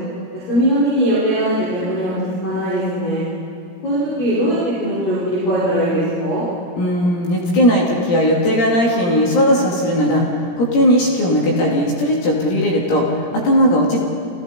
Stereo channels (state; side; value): late; right; 17 ms